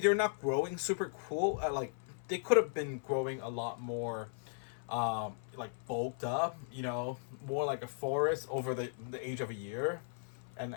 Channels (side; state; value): right; silent; 53 dB below the other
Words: not growing super cool. Like they could have been growing a lot more, like bulked up. More like a forest over the age of a year,